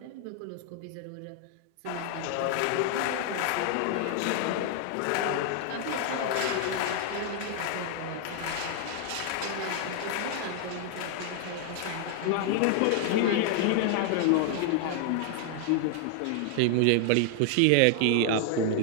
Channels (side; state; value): both; different; correlation 0.00